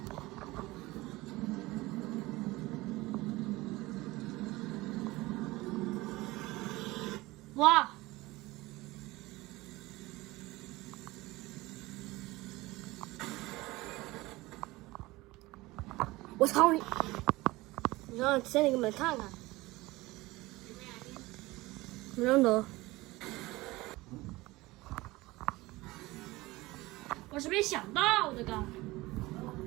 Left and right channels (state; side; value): quieter; left; 20.3 dB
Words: 哇！我操你！你让先你给你们看看，没认得。我是没想到这个。